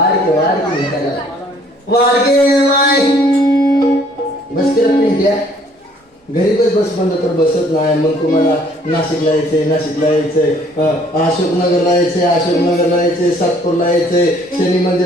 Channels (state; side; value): normal; both; correlation 0.60